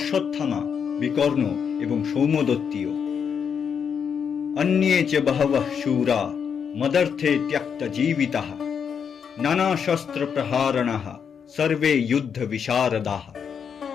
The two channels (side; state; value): right; quieter; 7.1 dB